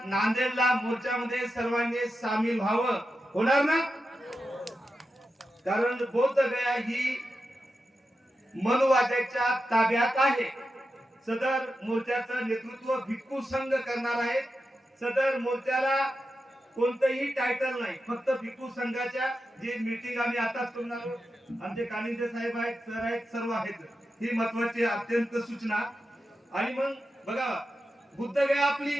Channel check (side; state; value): both; normal; correlation 0.90